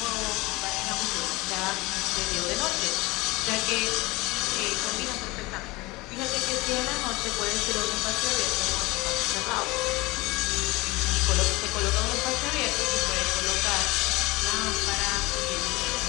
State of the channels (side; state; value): right; quieter; 22.3 dB